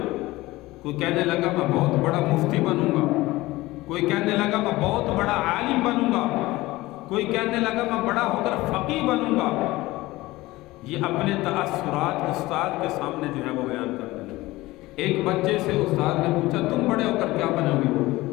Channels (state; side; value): quieter; right; 19.1 dB